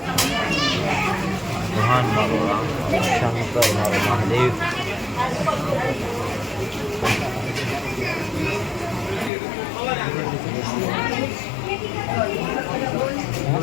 ભગવાન મારો રામ, શંકર મારો મહાદેવ.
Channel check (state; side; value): drops out; right; at 9.3 s